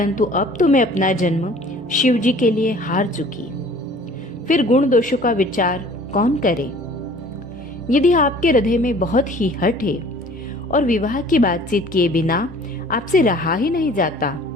अब तो मैं अपना जन्म शिव जी के लिए हार चुकी। फिर गुण दोषों का विचार कौन करे? यदि आपके हृदय में बहुत ही हठ है और विवाह की बातचीत किए बिना आपसे रहा ही नहीं जाता,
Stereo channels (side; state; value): both; normal; correlation 0.50